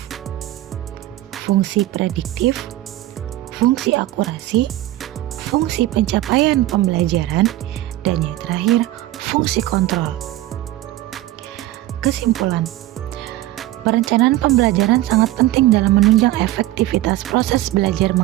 fungsi prediktif, fungsi akurasi, fungsi pencapaian pembelajaran, dan yang terakhir, fungsi kontrol. Kesimpulan, perencanaan pembelajaran sangat penting dalam menunjang efektivitas proses belajar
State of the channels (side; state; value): left; quieter; 15.6 dB